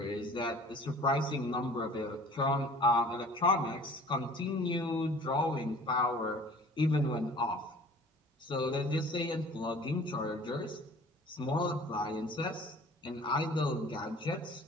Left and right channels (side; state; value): both; normal; correlation 0.47